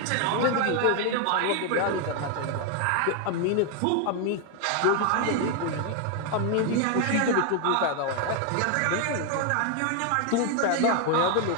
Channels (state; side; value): different; both; correlation 0.00